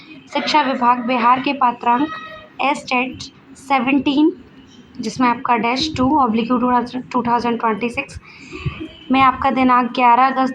विभाग बिहार के पात्रांक एस्टेट 17 जिसमें आपका -2/2026 में आपका दिनांक 11 अगस्त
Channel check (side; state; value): both; identical; correlation 1.00